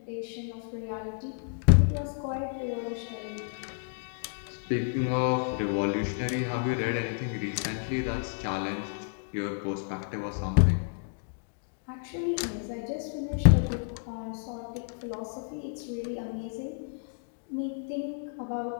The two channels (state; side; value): silent; right; digital silence